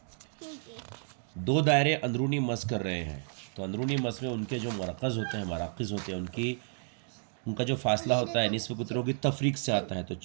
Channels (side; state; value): left; silent; 57 dB below the other